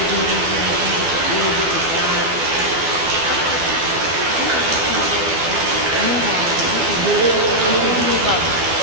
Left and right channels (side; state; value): left; late; 12 ms